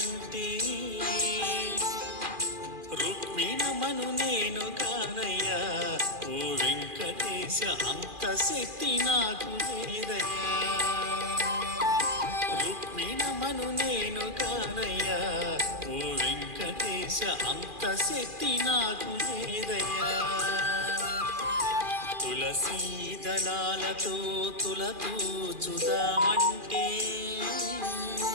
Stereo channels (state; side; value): late; left; 2.4 ms